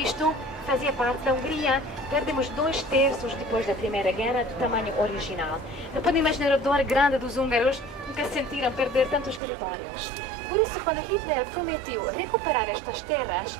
fazia parte da Hungria. Perdemos 2/3 depois da Primeira Guerra do tamanho original. Não podem imaginar a dor grande dos húngaros, nunca sentiram perder tantos territórios. Por isso, quando Hitler prometeu recuperar estas terras,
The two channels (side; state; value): left; drops out; at 9.4 s